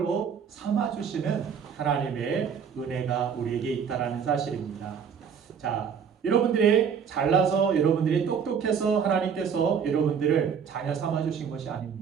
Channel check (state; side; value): quieter; left; 7.0 dB